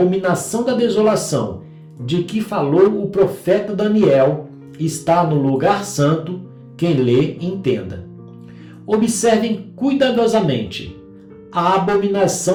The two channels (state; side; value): identical; both; correlation 1.00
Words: da desolação, de que falou o profeta Daniel, está no lugar santo, quem lê, entenda. Observem cuidadosamente a